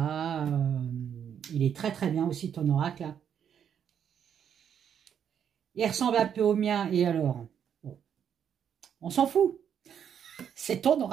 Il est très très bien aussi ton oracle. Là. Il ressemble un peu au mien. Et alors bon, on s'en fout. C'est ton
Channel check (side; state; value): left; quieter; 8.4 dB